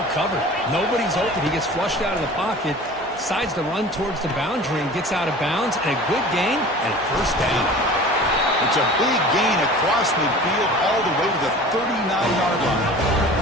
covered. Nobody's open. He gets flushed out of the pocket, decides to run towards the boundary and gets out of bounds, and a good gain and first down. It's a big gain across midfield all the way to the 39-yard line.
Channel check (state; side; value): normal; both; correlation 0.41